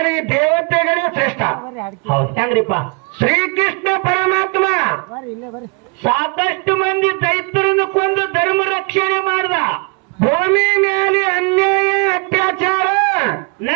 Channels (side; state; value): left; quieter; 34.7 dB